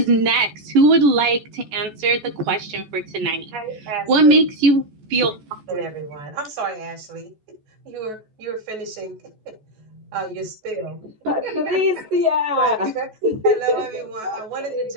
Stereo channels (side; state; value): left; late; 14 ms